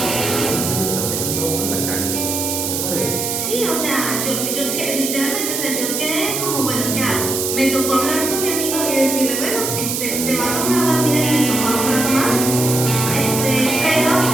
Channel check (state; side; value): noise; right; hiss, 2 dB below the sound